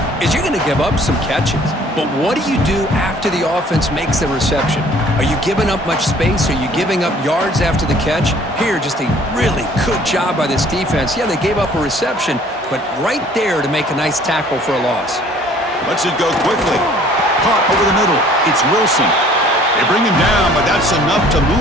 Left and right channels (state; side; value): normal; both; correlation 0.55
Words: is you're going to give up some catches. But what do you do after the offense makes the reception? Are you giving up much space? Are you giving up yards after the catch? Here, just a really good job by this defense. Yeah, they gave up a reception, but right there to make a nice tackle for a loss. Lets it go quickly. Caught over the middle. It's Wilson. They bring him down, but that's enough to